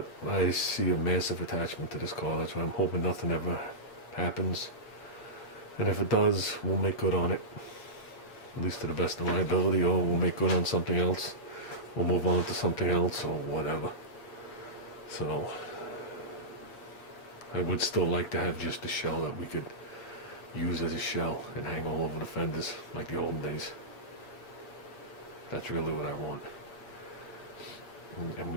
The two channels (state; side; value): late; right; 8.0 ms